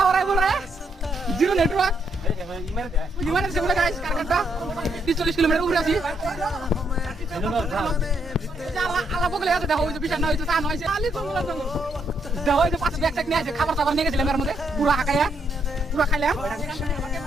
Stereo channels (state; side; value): normal; both; correlation 0.76